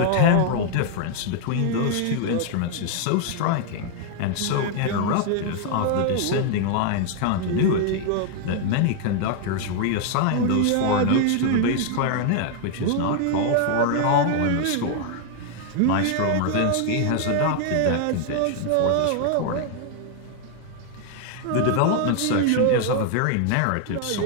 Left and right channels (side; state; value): both; different; correlation 0.00